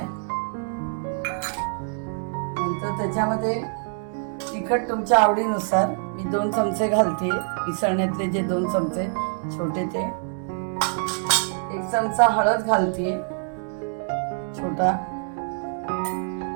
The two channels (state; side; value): silent; left; 62 dB below the other